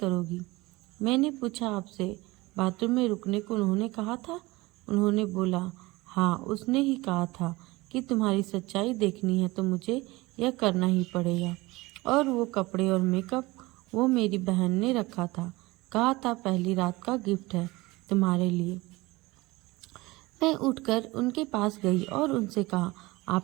मैंने पूछा, आपसे बाथरूम में रुकने को उन्होंने कहा था? उन्होंने बोला, हाँ, उसने ही कहा था कि तुम्हारी सच्चाई देखनी है तो मुझे यह करना ही पड़ेगा। और वो कपड़े और मेकअप वो मेरी बहन ने रखा था, कहा था पहली रात का गिफ्ट है तुम्हारे लिए। मैं उठकर उनके पास गई और उनसे कहा,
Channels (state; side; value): quieter; left; 21.5 dB